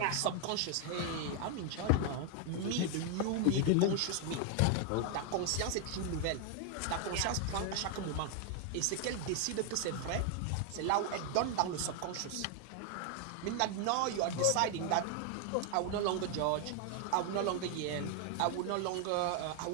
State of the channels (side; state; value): both; different; correlation 0.00